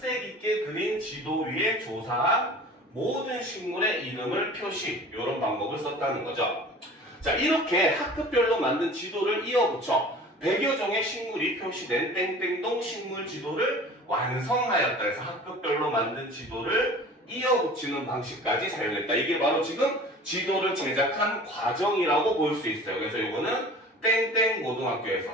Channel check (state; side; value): normal; both; correlation 0.42